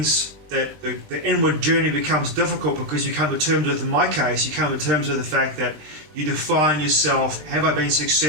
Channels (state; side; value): late; left; 20 ms